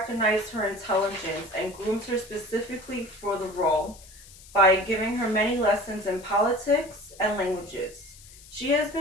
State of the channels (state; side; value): noise; left; hiss, 21 dB below the sound